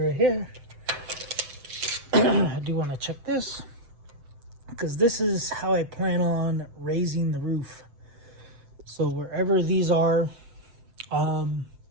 right here. I do want to check this, because this is how I plan on raising the roof. So wherever these are,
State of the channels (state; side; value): late; left; 7.8 ms